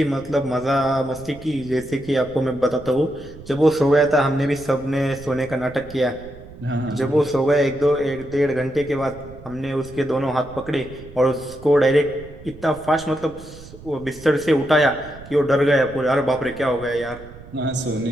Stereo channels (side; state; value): right; noise; rumble, 18 dB below the sound